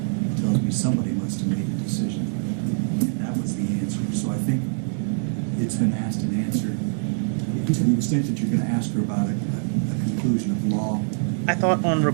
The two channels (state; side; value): silent; left; 62 dB below the other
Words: tells me somebody must have made a decision. And that was the answer. So I think it's been asked and answered. to the extent that you're gonna ask her about a conclusion of law. I thought on